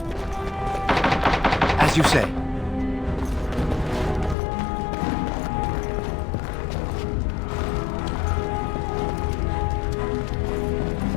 As you say.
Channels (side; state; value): right; drops out; at 4.4 s